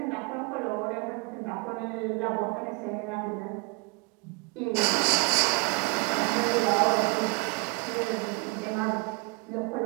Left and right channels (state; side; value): quieter; left; 31.0 dB